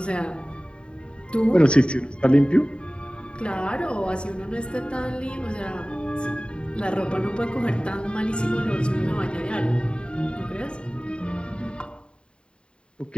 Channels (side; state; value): right; late; 0.052 ms